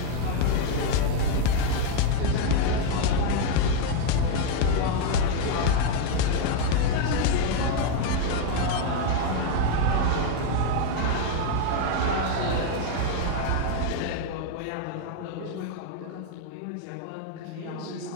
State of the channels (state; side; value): different; both; correlation 0.01